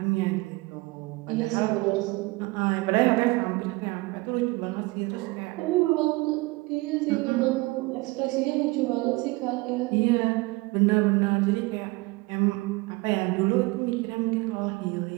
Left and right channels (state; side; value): quieter; left; 23.5 dB